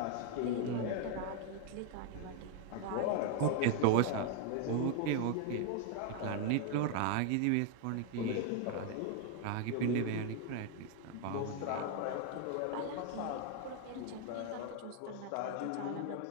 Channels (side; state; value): both; different; correlation 0.01